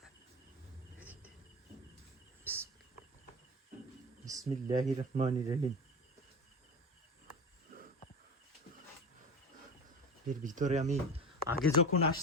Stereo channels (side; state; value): both; normal; correlation 0.29